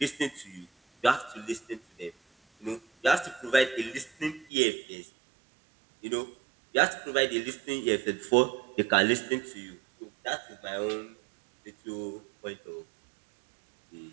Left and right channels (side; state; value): left; drops out; at 4.5 s